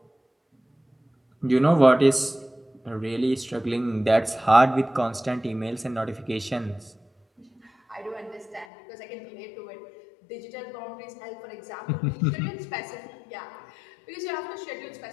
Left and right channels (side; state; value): right; drops out; at 8.7 s